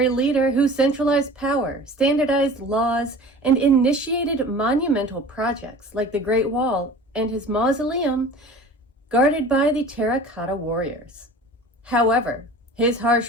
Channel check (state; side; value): normal; both; correlation 0.41